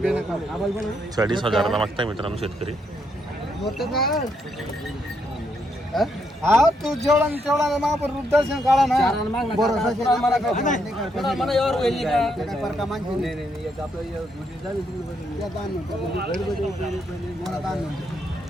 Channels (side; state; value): both; normal; correlation 0.76